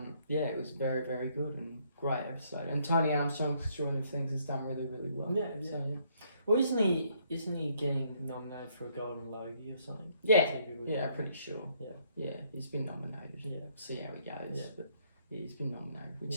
it was very, very good and great episode. And Tony Armstrong's Extraordinary Things has done really, really well. Well, isn't he getting nominated for a Golden Logie or something? Yeah, pretty sure. Yeah, he's been nominated. Yeah, see how he goes. But he's been nominated, which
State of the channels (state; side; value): inverted; both; correlation -0.68